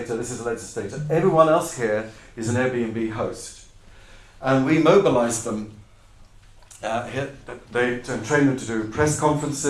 This is a legislator. Everyone else here is an Airbnb host. And we mobilized them and trained them to do press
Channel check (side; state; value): both; identical; correlation 1.00